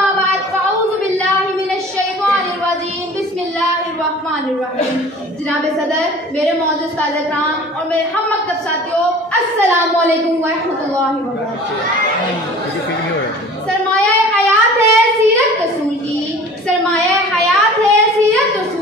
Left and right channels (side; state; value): both; normal; correlation 0.44